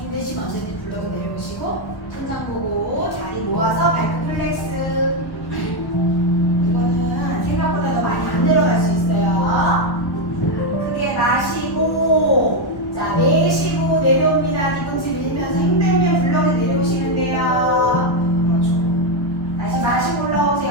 언제든 블럭에 내려오시고 천장 보고 다리 모아서 발끝 플렉스. 이거는 생각보다 더 많이 안 내려갈 수 있어요. 자, 크게 마시고 자, 내쉬고 내려옵니다. 뒤통수 밀면서 힘들면 블럭에 내려오시면 돼요. 그렇죠. 다시 마시고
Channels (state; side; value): late; right; 1.1 ms